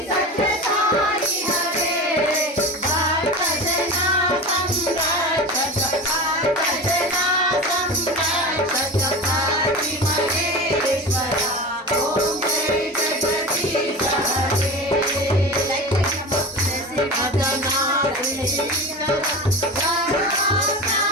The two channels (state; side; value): normal; both; correlation 0.29